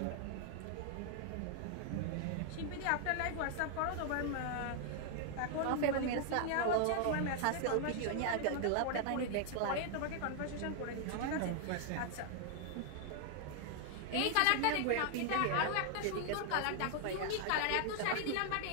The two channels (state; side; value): different; both; correlation 0.00